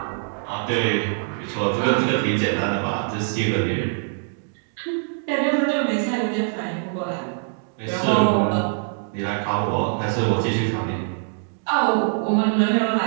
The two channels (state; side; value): silent; left; 63 dB below the other